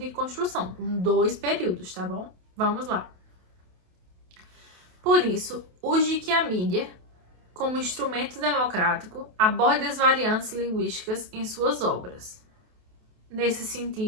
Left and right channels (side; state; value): left; late; 28 ms